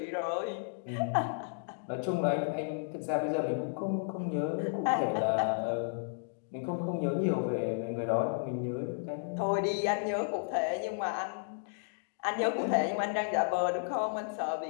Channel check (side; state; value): right; silent; digital silence